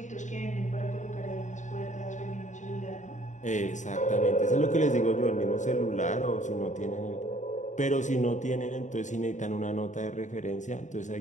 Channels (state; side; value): late; right; 0.35 ms